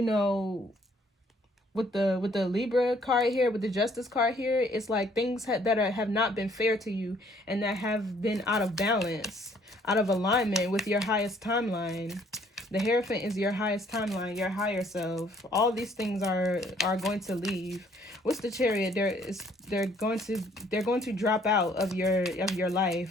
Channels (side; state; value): both; normal; correlation 0.63